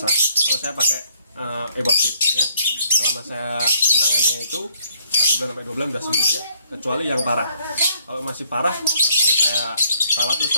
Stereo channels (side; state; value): both; inverted; correlation -0.67